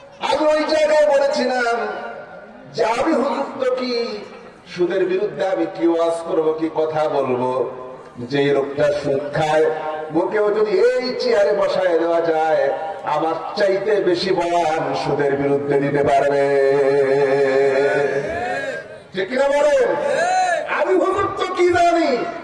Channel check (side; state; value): both; identical; correlation 1.00